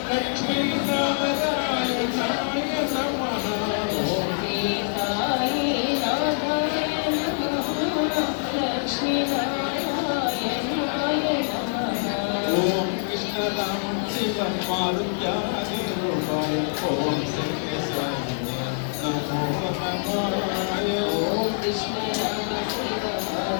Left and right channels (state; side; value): silent; right; 62 dB below the other